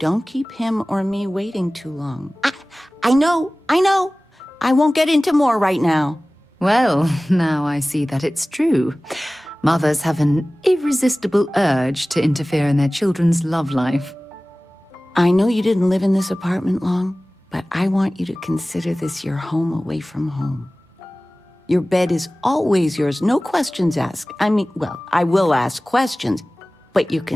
keep him or me waiting too long. I know. I won't get into more right now. Well, now I see that it's true. Mothers have an irresistible urge to interfere in their children's love life. I know you didn't live in this apartment long, but I want you to consider this your home away from home. Your bed is always yours, no questions asked. I mean, well, I will ask questions, but you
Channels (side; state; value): both; normal; correlation 0.98